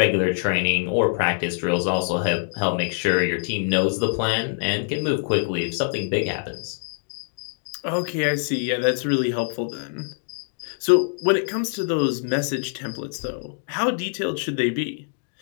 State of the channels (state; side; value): silent; right; digital silence